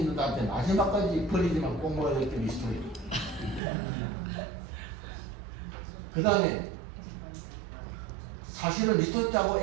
할 때 마지막까지 버리지만 꼭 먹어야 될 게 리스토리. 그 다음에 사실은 리스토리하고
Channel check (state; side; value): drops out; left; at 3.6 s